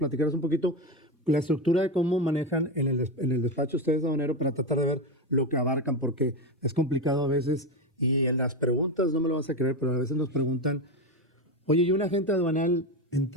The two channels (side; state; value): both; normal; correlation 0.15